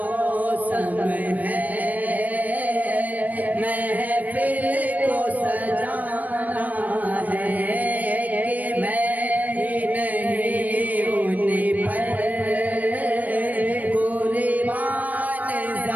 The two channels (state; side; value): late; left; 0.077 ms